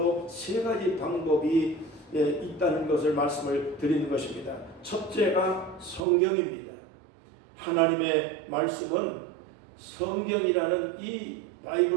세 가지 방법이 있다는 것을 말씀을 드리는 것입니다. 첫째가 성경입니다. 하나님의 말씀은 성경이라는 이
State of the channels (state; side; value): drops out; left; at 6.0 s